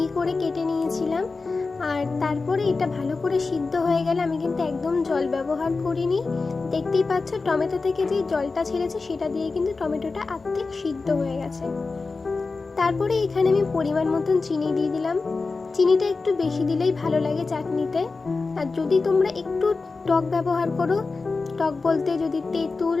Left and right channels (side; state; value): right; quieter; 4.0 dB